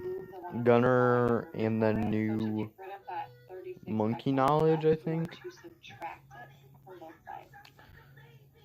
gunner and the new monkey knowledge, I think.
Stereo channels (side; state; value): both; identical; correlation 1.00